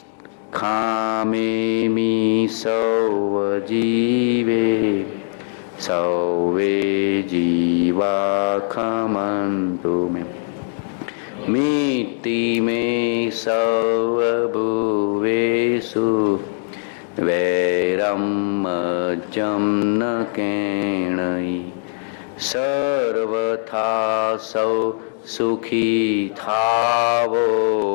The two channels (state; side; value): silent; right; 65 dB below the other